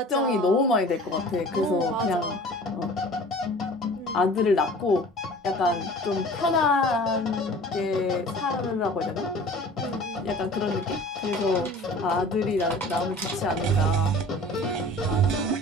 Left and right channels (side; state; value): both; normal; correlation 0.44